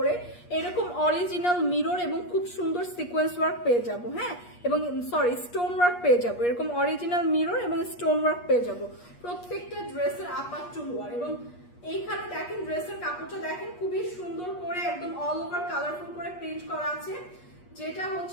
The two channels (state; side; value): late; right; 8.4 ms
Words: এরকম অরিজিনাল মিরর এবং খুব সুন্দর সিকোয়েন্স ওয়ার্ক পেয়ে যাব, হ্যাঁ এবং সরি স্টোন ওয়ার্ক পেয়ে যাব, এরকম অরিজিনাল মিরর এবং স্টোন ওয়ার্ক পেয়ে যাব প্রত্যেকটা ড্রেসের আপার টু লোয়ার। এবং এইখানে দেখেন ড্রেসের কাপড়টা দেখেন খুবই সুন্দর করে একদম অল ওভার কালারফুল করে প্রিন্ট করা আছে, যেটা